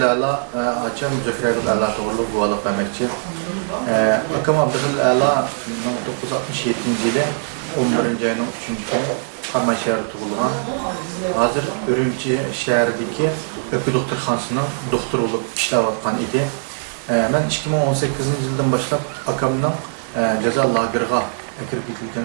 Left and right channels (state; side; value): silent; left; digital silence